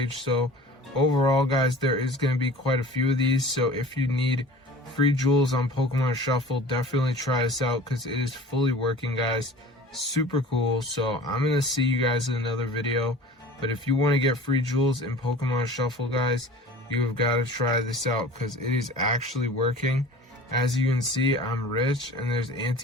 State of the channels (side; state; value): both; normal; correlation 0.42